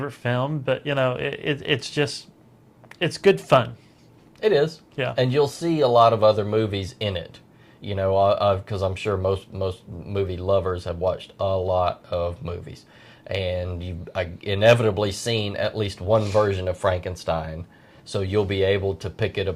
film, but you know, it's good fun. It is. Yeah. And you'll see a lot of other movies in it. You know, because I'm sure most movie lovers have watched a lot of movies, and you've inevitably seen at least one version of Frankenstein. So you'll be able to pick it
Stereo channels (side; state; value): both; identical; correlation 1.00